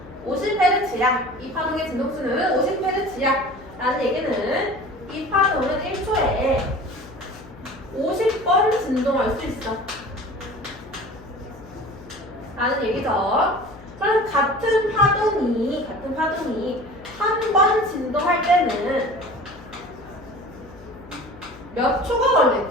50Hz야. 이 파동의 진동수는 50Hz야. 라는 얘기는 이 파동은 1초에 50번 진동할 수 있어. 라는 얘기죠. 그럼 같은 파동이 한 번 진동할 때는 몇 초가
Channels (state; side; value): noise; left; hum, 19 dB below the sound